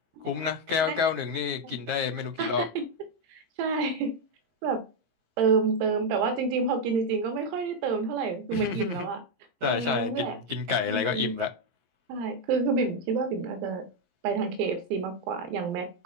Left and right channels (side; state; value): left; late; 17 ms